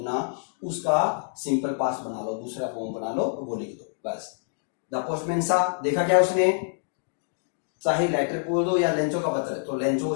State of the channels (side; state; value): right; silent; digital silence